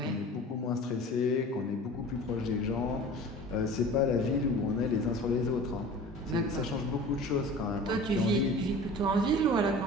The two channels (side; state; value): both; normal; correlation 0.40